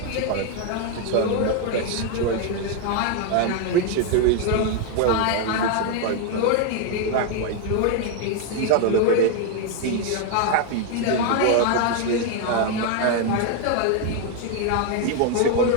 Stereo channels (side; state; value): both; different; correlation 0.00